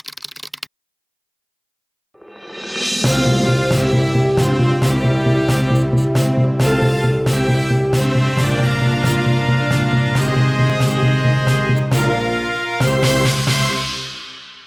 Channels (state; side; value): identical; both; correlation 1.00